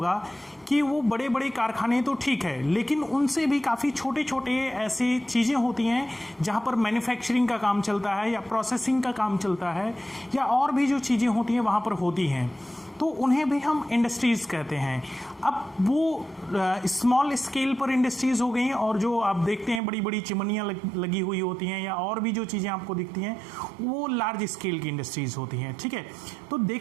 कि वो बड़े बड़े कारखाने तो ठीक है, लेकिन उनसे भी काफ़ी छोटे छोटे ऐसी चीज़ें होती हैं जहाँ पर मैन्युफैक्चरिंग का काम चलता है या प्रोसेसिंग का काम चलता है या और भी जो चीज़ें होती हैं वहाँ पर होती हैं, तो उन्हें भी हम इंडस्ट्रीज़ कहते हैं. अब वो स्मॉल स्केल पर इंडस्ट्रीज़ हो गई और जो आप देखते हैं बड़ी बड़ी चिमनियाँ लगी हुई होती हैं या और भी जो चीज़ें आपको दिखती हैं वो लार्ज स्केल की इंडस्ट्रीज़ होती हैं. ठीक है, तो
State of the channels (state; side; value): drops out; left; at 19.8 s